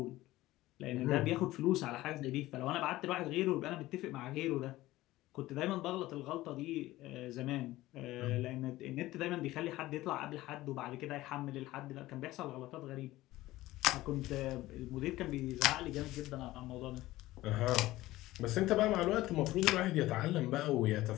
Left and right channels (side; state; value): right; quieter; 17.1 dB